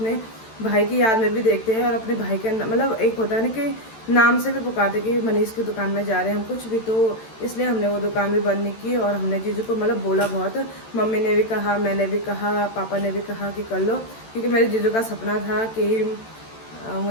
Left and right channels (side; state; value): right; late; 13 ms